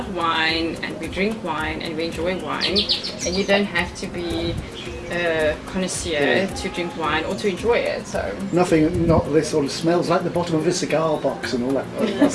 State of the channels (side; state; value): both; identical; correlation 1.00